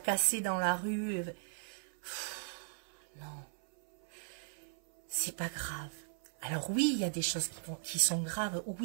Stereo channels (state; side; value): silent; left; 53 dB below the other